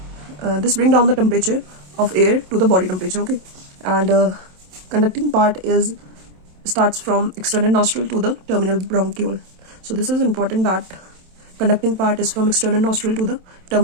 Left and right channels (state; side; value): late; left; 27 ms